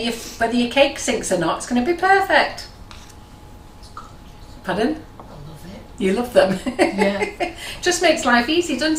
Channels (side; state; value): both; identical; correlation 1.00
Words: your cake sinks or not. It's going to be perfect. Pardon? You love them. Yeah. Just makes life easy, doesn't